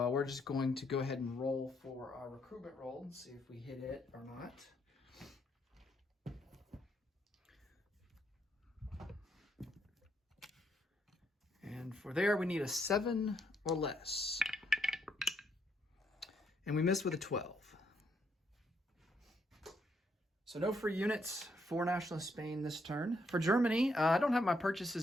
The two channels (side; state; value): both; normal; correlation 0.74